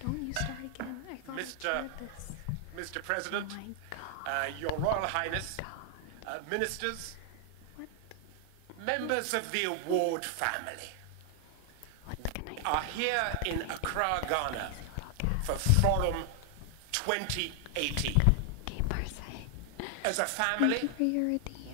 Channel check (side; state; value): both; different; correlation 0.00